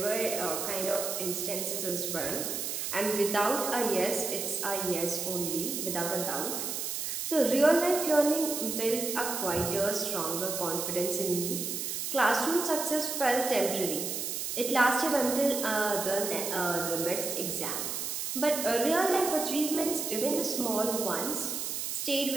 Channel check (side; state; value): right; noise; hiss, 3 dB below the sound